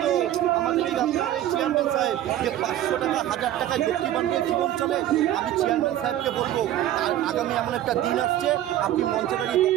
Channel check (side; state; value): left; quieter; 12.6 dB